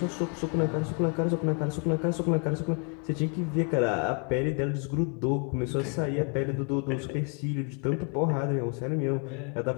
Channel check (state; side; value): quieter; right; 38.3 dB